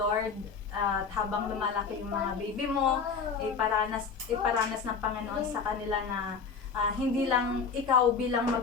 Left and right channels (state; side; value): quieter; right; 5.5 dB